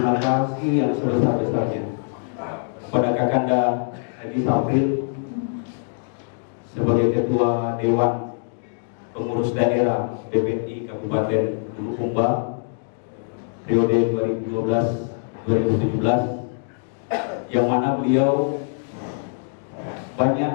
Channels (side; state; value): right; silent; digital silence